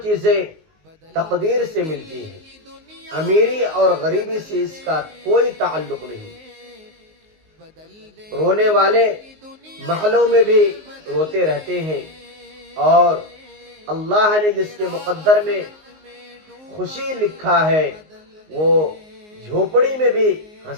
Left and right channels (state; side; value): late; left; 19 ms